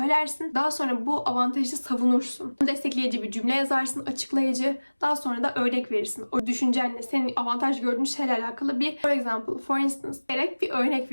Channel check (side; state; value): both; inverted; correlation -1.00